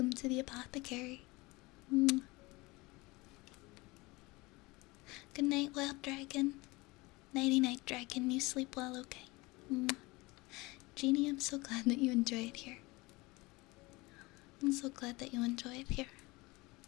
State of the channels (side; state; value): right; quieter; 23.1 dB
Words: to the apothecary. Mwah. Good night, wild dragon. Nighty night, dragon. You sleep well, okay? Mwah. Jeannie, I'm so glad that you enjoy it here. I'm so glad that you enjoy it here.